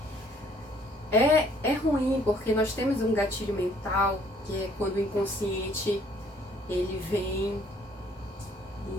É ruim porque nós temos um gatilho mental, que é quando o inconsciente ele vem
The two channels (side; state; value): both; normal; correlation 0.61